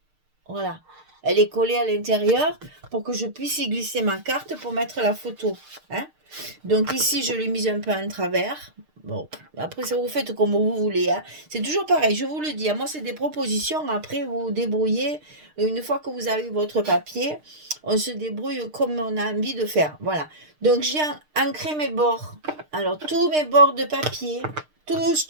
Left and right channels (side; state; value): left; late; 6.5 ms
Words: Voilà. Elle est collée à l'intérieur pour que je puisse y glisser ma carte pour mettre la photo. Hein. Donc ici, je l'ai mise un peu en travers. Bon, après, ça vous faites comme vous voulez. Hein. C'est toujours pareil, je vous le dis. Moi, c'est des propositions. Après, vous vous débrouillez. Une fois que vous avez votre papier, on se débrouille comme on a envie de faire. Voilà. Donc, j'ai ancré mes bords. Alors, tous mes bords de papier, tous,